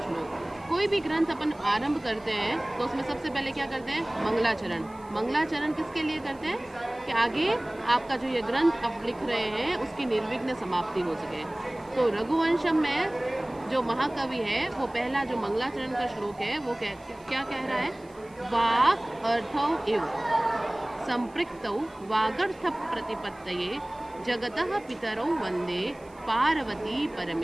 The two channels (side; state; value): right; noise; hiss, 29 dB below the sound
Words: श्लोक। कोई भी ग्रंथ अपन आरंभ करते हैं तो उसमें सबसे पहले क्या करते हैं? मंगलाचरण। मंगलाचरण किसके लिए करते हैं? कि आगे आपका जो ये ग्रंथ आप लिख रहे हैं उसकी निर्विघ्न समाप्ति हो सके। तो रघुवंशम में जो महाकवि है वो पहला जो मंगलाचरण का श्लोक है वो क्या कह रहा है? वाक् अर्थौ इव संपृक्तौ वागर्थ प्रतिपत्तये जगतः पितरौ वंदे पार्वती